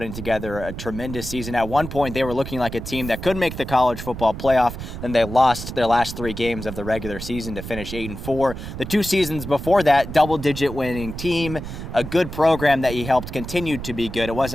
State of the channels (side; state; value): right; noise; rumble, 9 dB below the sound